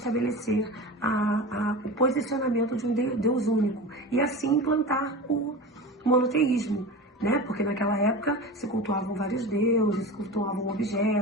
o posicionamento de um Deus único e assim implantar o monoteísmo, né? Porque naquela época se cultuavam vários deuses, se cultuavam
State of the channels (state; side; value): normal; both; correlation 0.30